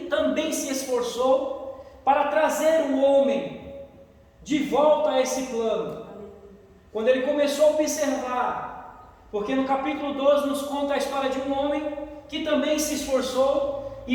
também se esforçou para trazer o homem de volta a esse plano. Quando Ele começou a observar, porque no capítulo 12 nos conta a história de um homem que também se esforçou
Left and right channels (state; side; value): identical; both; correlation 1.00